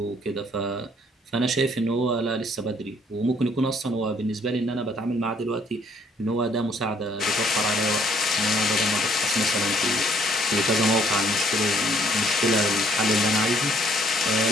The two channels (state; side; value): normal; both; correlation 0.63